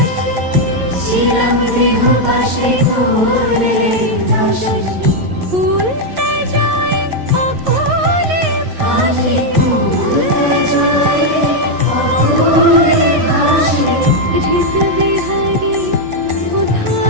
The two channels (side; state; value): left; late; 11 ms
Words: ছিলাম গৃহবাসী করলে উদাসী। ভুলতে যায় অকলে ভাসি, ভুলতে যায় অকলে ভাসি। হৃদ বিহারী